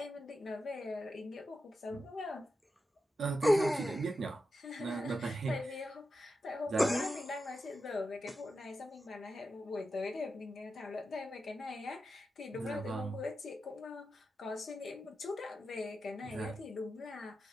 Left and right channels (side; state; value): both; normal; correlation 0.89